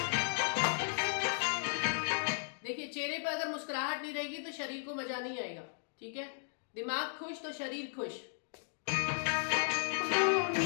चेहरे पर अगर मुस्कुराहट नहीं रहेगी तो शरीर को मजा नहीं आएगा। ठीक है, दिमाग खुश तो शरीर खुश।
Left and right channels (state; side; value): silent; right; digital silence